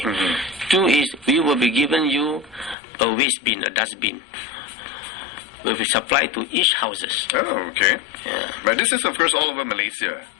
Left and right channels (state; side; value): drops out; right; at 2.8 s